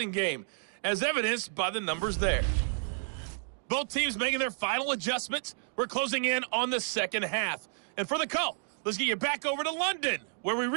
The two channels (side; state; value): left; silent; digital silence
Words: game, as evidenced by the numbers there. Both teams making their final adjustments. We're closing in on the second half. And for the call, let's get you back over to London, where we